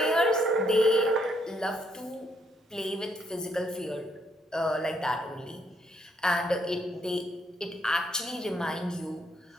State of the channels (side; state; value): both; normal; correlation 0.72